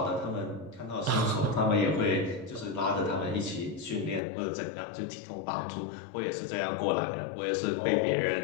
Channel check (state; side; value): drops out; right; at 4.2 s